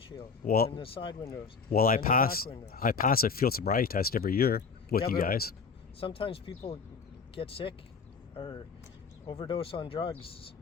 and the side windows. Well, I and the pass back windows. I pass a field sobriety test every year with you but guys. Sometimes people get sick or overdose on drugs.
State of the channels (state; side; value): quieter; right; 5.3 dB